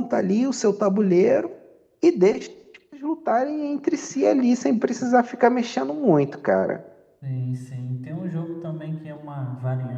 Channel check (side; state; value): both; identical; correlation 1.00